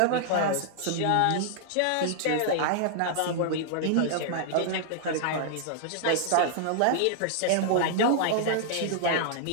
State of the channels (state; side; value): different; both; correlation -0.01